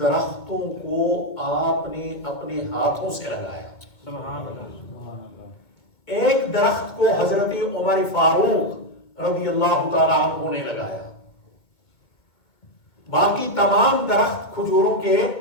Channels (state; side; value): late; right; 2.2 ms